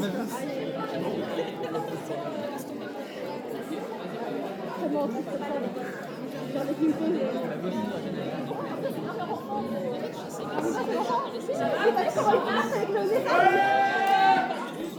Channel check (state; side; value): identical; both; correlation 1.00